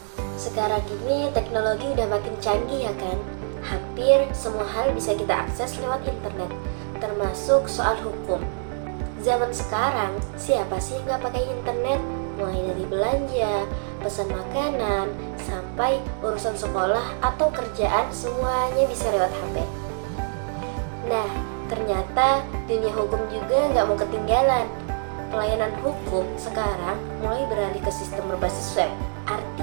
sekarang ini teknologi udah makin canggih ya kan? Hampir semua hal bisa kita akses lewat internet, termasuk soal hukum. Zaman sekarang, siapa sih yang nggak pakai internet? Mulai dari belanja, pesan makanan, sampai urusan sekolah atau kerjaan semuanya bisa lewat HP. Nah, ternyata dunia hukum juga nggak mau ketinggalan. Pelayanan hukum sekarang mulai beralih ke sistem berbasis web.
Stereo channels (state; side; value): silent; left; digital silence